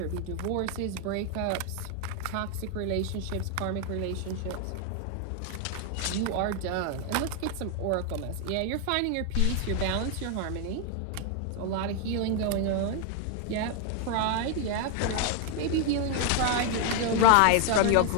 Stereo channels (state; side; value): different; both; correlation 0.00